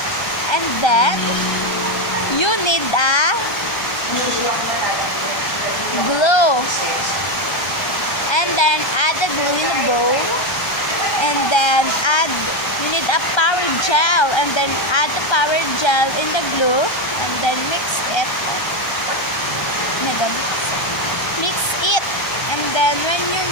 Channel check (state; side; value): late; right; 1.3 ms